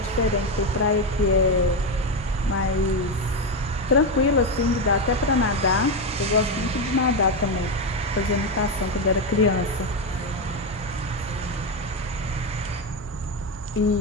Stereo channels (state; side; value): normal; both; correlation 0.10